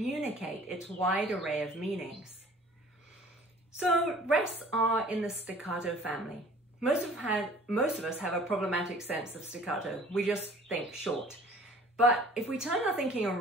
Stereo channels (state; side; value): normal; both; correlation 0.50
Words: its wide array of meanings. So rests are in the staccato family. Most of us have a problematic sense of staccato. We just think short. But if we turn our thinking